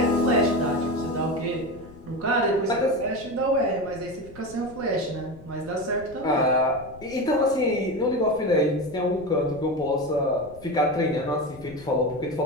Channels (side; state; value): left; noise; rumble, 20 dB below the sound